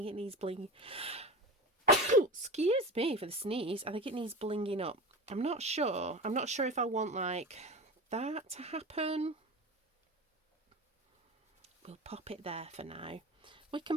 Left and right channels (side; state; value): both; normal; correlation 0.28